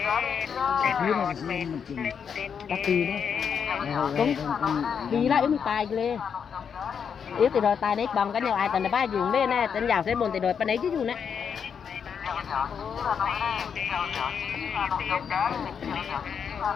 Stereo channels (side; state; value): right; quieter; 7.0 dB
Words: đi lại mình tài lên yếu thì rồi tài đấy bằng cái nhau ai tận ba dùng lên nè tận giàu sẽ buồn thì rồi bên đấy chứ dùng nè